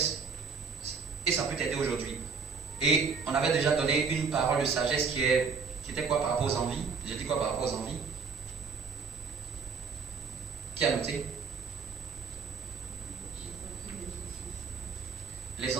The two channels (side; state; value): left; quieter; 5.4 dB